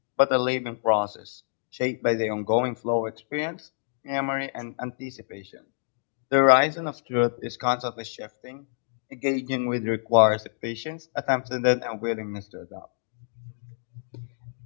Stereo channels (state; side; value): silent; right; 60 dB below the other